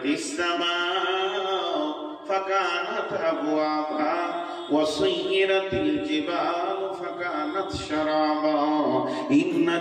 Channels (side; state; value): both; identical; correlation 1.00